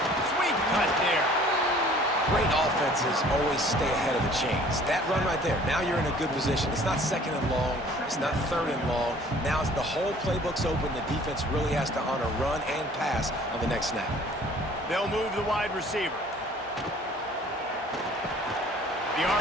Sweet cut there. Great offenses always stay ahead of the chains. That run right there, now you're in a good position. It's not second and long. It's not third and long. Now it's the whole playbook's open. The defense really has to honor run and pass on the next snap. They'll move the wide receiver. The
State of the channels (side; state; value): both; normal; correlation 0.52